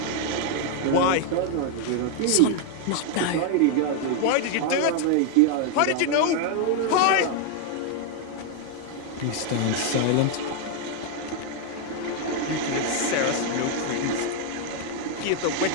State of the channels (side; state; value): both; different; correlation 0.00